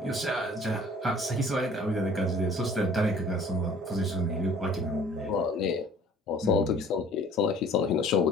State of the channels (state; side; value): normal; both; correlation 0.51